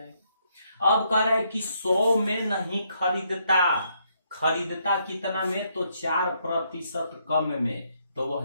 अब कह रहा है कि 100 में नहीं खरीदता कितना में, तो 4% कम में, तो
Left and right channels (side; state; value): both; inverted; correlation -0.74